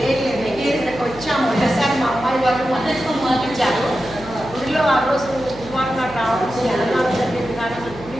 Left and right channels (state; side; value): noise; right; hum, 16 dB below the sound